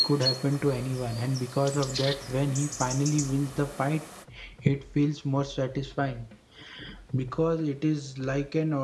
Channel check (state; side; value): identical; both; correlation 1.00